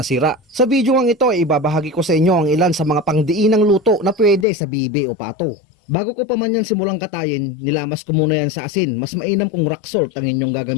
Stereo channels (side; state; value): right; drops out; at 4.5 s